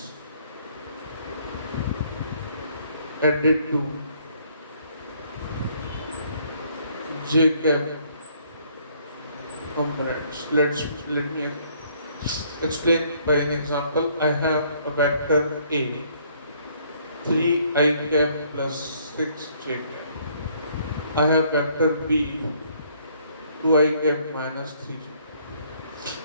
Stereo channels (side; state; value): both; inverted; correlation -0.64